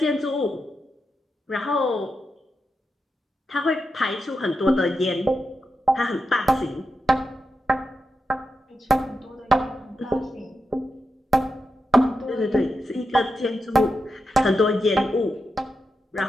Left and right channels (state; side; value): normal; both; correlation 0.88